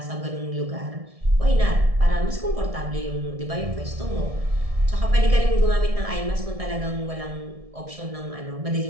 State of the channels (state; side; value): late; left; 1.7 ms